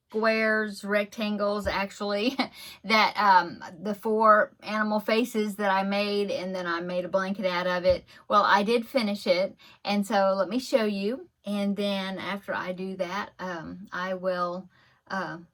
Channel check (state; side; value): identical; both; correlation 1.00